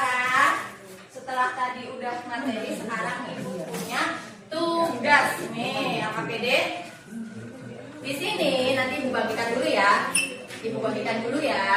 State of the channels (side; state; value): both; identical; correlation 1.00